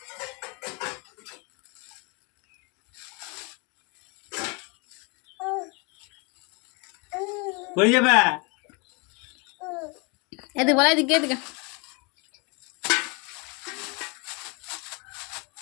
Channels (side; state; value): right; quieter; 30.0 dB